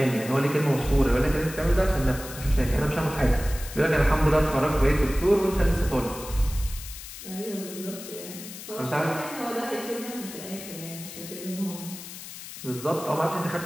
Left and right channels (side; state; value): left; noise; hiss, 12 dB below the sound